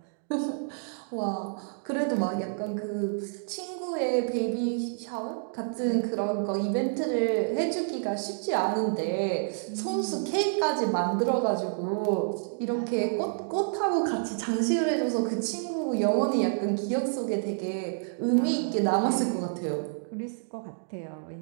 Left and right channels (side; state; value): left; silent; digital silence